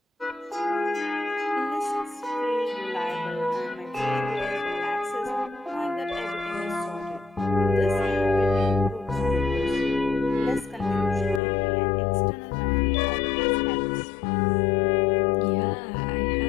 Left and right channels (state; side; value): drops out; right; at 11.4 s